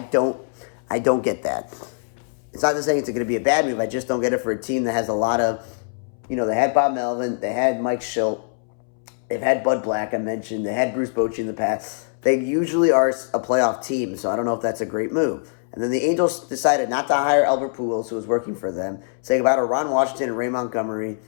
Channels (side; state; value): right; silent; 63 dB below the other